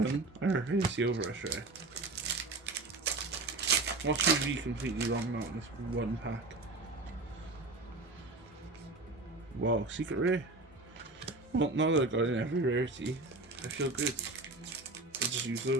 I reckon it's the overrush rare. Watch me be completely wrong now on this one pack. Wow, secret rare. Well, now that I got in every rarity, I feel good. I'll just use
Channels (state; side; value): quieter; left; 3.3 dB